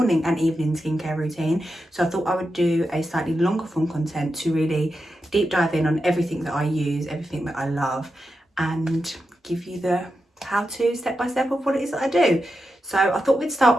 and evening skincare routine, so I thought I would do a slightly longer form content to really deep dive in on everything that I use, everything that I love, and give you the how-to step-by-step of what it is that I do. So I thought we'd start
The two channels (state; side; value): normal; both; correlation 0.88